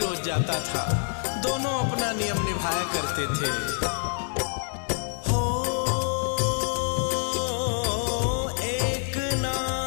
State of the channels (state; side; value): silent; right; 60 dB below the other